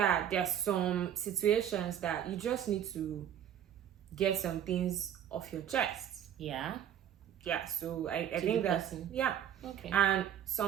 there's some situations that you just need to get some things off your chest. Yeah. So I think that's okay. And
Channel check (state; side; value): quieter; left; 9.9 dB